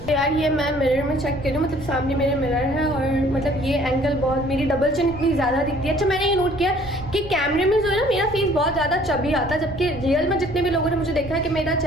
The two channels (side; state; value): left; noise; rumble, 14 dB below the sound